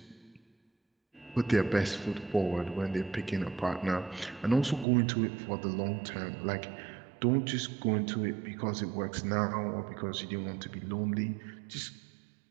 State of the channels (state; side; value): drops out; left; at 4.9 s